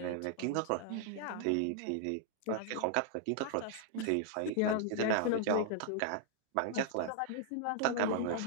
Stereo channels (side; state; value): both; different; correlation 0.00